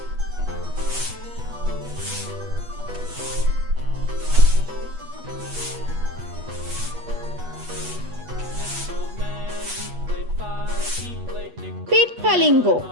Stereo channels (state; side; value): late; left; 8.3 ms